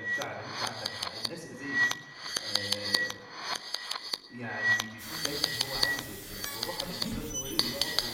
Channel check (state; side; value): identical; both; correlation 1.00